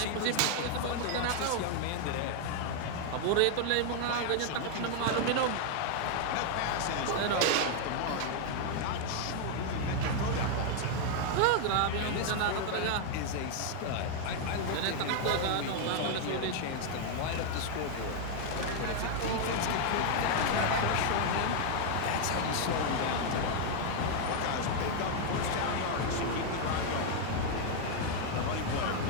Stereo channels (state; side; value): different; both; correlation 0.00